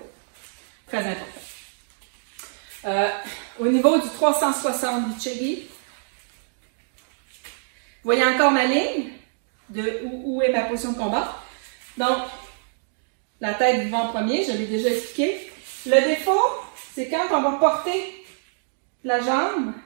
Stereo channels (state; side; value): silent; left; digital silence